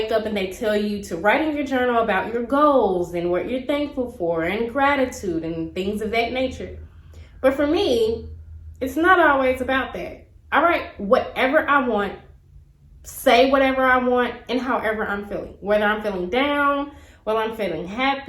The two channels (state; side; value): identical; both; correlation 1.00